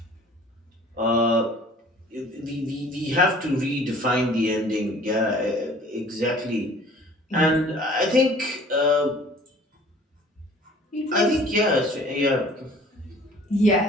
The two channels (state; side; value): normal; both; correlation 0.50